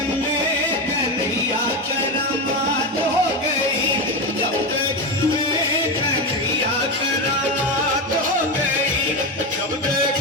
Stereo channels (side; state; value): both; normal; correlation 0.15